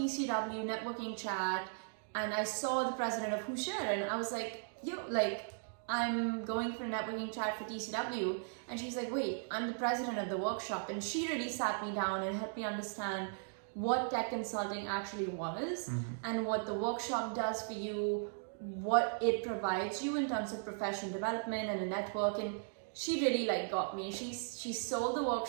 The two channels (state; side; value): silent; left; digital silence